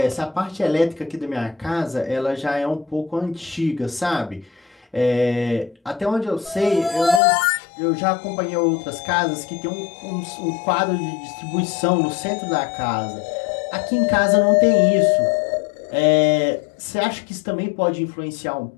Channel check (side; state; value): right; drops out; at 7.2 s